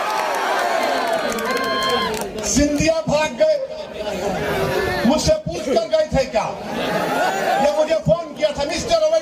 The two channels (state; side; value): identical; both; correlation 1.00